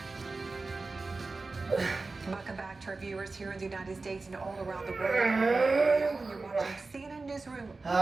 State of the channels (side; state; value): left; quieter; 3.7 dB